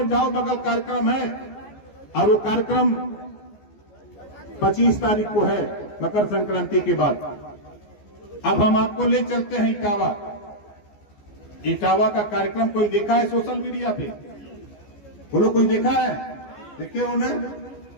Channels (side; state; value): right; late; 14 ms